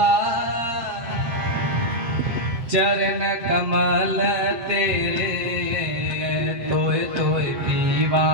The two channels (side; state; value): left; late; 7.7 ms